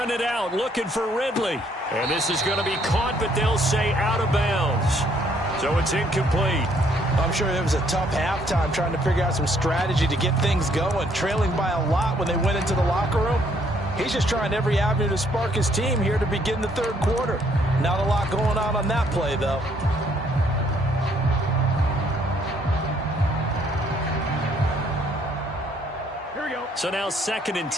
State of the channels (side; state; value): both; normal; correlation 0.67